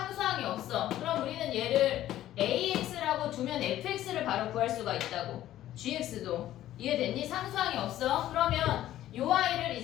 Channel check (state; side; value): quieter; right; 13.3 dB